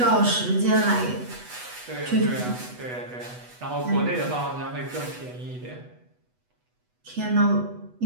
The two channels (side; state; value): left; late; 8.1 ms